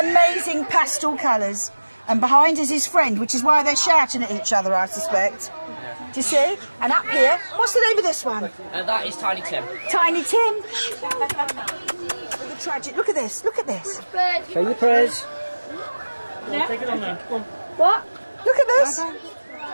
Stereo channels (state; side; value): inverted; both; correlation -1.00